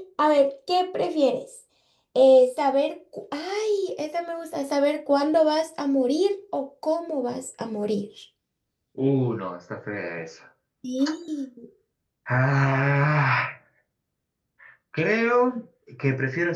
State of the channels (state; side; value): identical; both; correlation 1.00